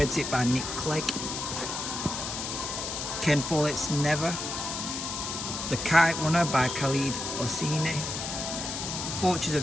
by Nick Clegg. Ken Follett's Never. The Kite Runner by Khalid Hosseini. Forces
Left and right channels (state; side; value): noise; left; hiss, 4 dB below the sound